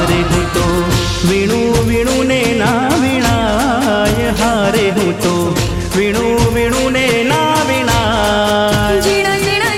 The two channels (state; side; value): identical; both; correlation 1.00